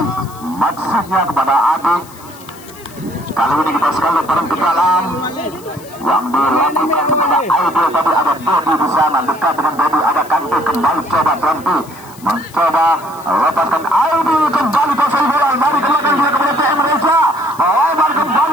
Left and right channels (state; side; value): noise; left; hiss, 22 dB below the sound